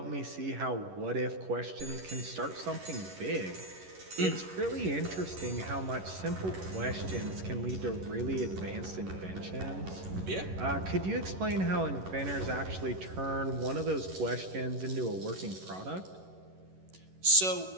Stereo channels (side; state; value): left; late; 11 ms